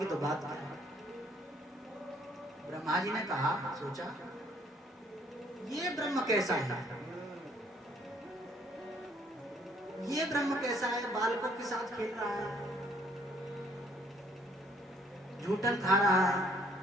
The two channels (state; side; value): normal; both; correlation 0.63